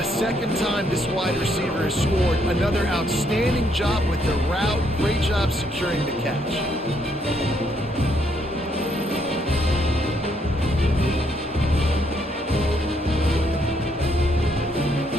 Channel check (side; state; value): both; normal; correlation 0.72